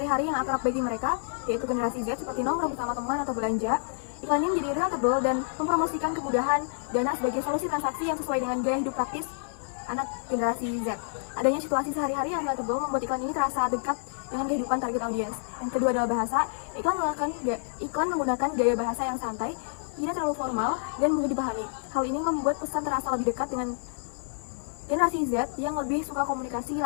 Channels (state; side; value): silent; right; 59 dB below the other